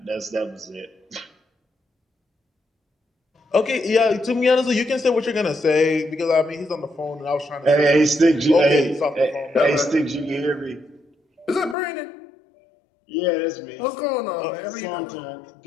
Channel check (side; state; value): right; drops out; at 11.8 s